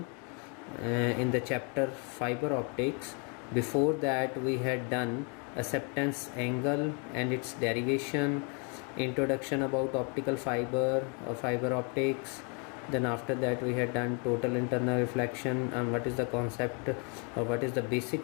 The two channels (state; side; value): quieter; right; 36.1 dB